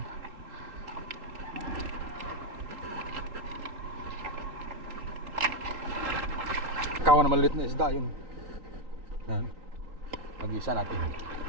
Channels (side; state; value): left; late; 3.9 ms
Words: Kawan na maliit na isda yun. Yan. Mag-isa natin.